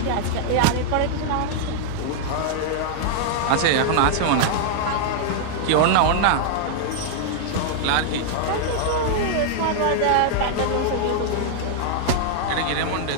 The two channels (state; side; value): different; both; correlation -0.01